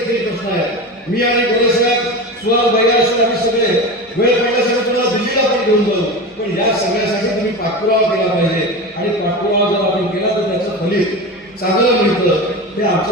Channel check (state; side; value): normal; both; correlation 0.26